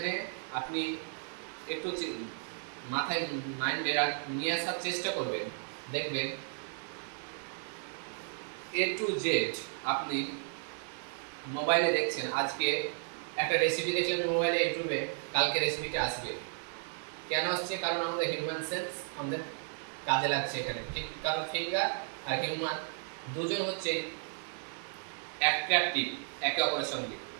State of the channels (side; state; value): left; silent; 55 dB below the other